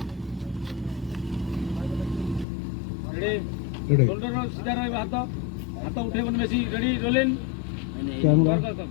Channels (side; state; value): right; drops out; at 2.5 s